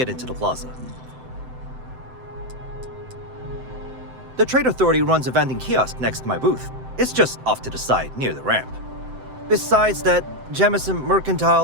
into the plaza. The Trade Authority runs a vending kiosk next to my booth. It's just off to the side, near the ramp. Besides that, Jemison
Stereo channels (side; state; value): left; late; 7.8 ms